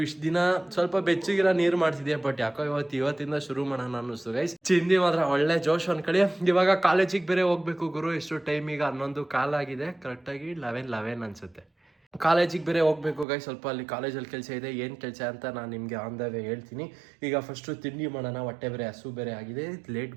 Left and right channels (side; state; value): left; drops out; at 13.2 s